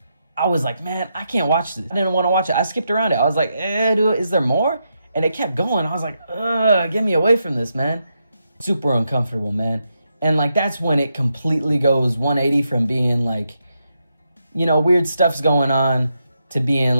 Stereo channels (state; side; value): inverted; both; correlation -0.83